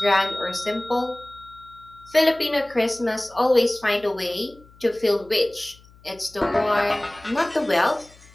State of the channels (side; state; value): left; noise; hum, 26 dB below the sound